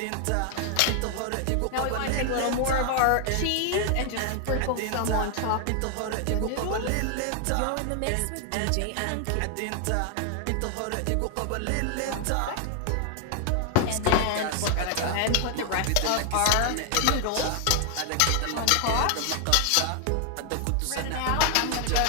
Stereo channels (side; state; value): both; different; correlation 0.00